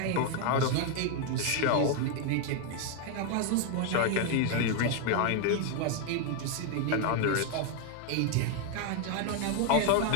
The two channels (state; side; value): different; both; correlation 0.01